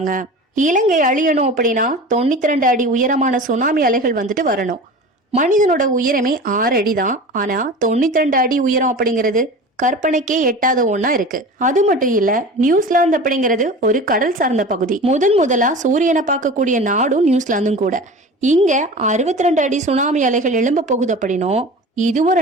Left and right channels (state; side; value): normal; both; correlation 0.35